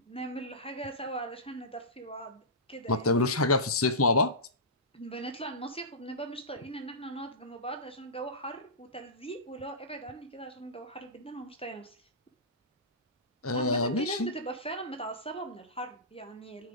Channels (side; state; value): both; normal; correlation -0.19